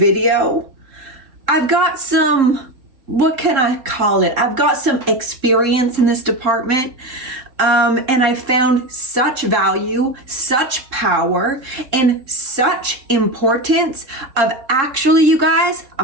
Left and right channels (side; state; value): left; late; 3.7 ms